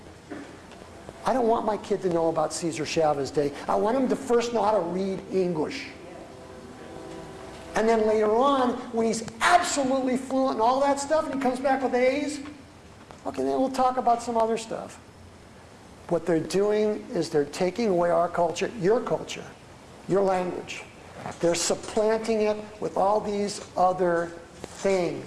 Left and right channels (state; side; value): identical; both; correlation 1.00